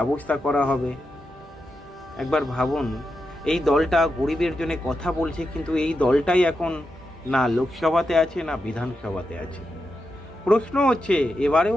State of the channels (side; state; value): both; normal; correlation 0.87